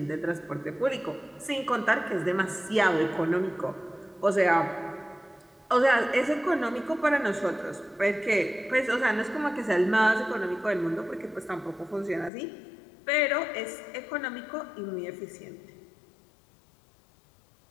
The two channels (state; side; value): drops out; right; at 12.3 s